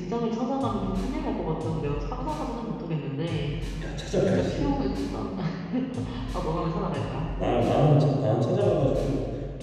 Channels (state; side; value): identical; both; correlation 1.00